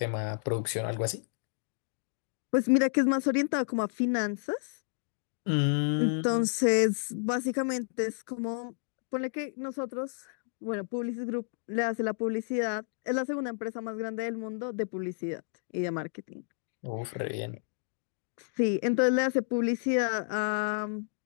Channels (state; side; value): silent; right; digital silence